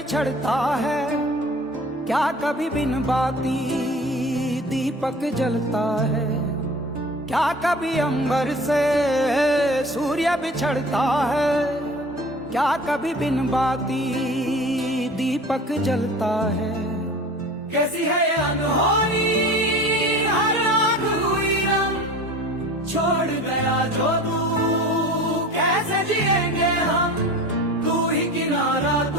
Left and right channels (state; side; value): normal; both; correlation 0.40